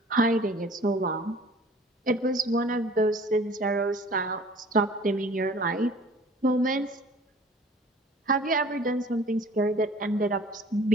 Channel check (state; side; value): normal; both; correlation 0.48